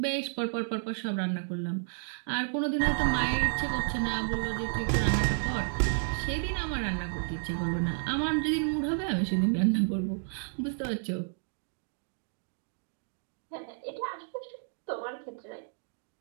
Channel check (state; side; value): silent; left; digital silence